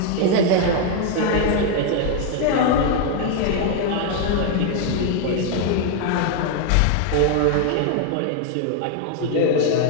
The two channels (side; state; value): both; different; correlation 0.00